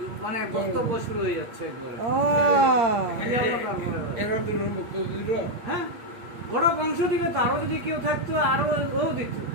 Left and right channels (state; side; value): late; left; 8.6 ms